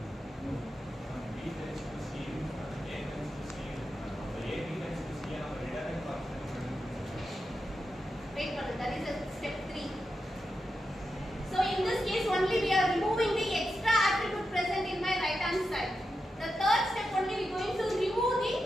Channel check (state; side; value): normal; both; correlation 0.88